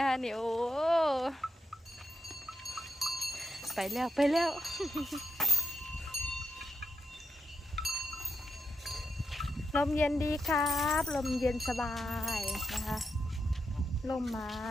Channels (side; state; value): both; normal; correlation 0.85